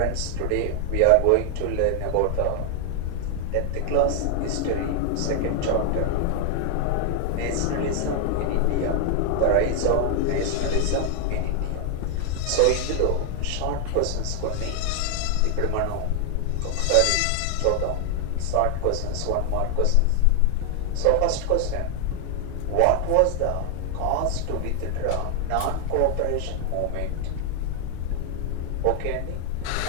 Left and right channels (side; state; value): both; different; correlation 0.00